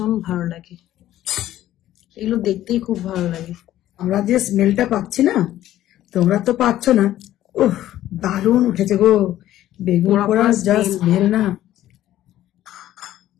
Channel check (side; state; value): right; quieter; 13.4 dB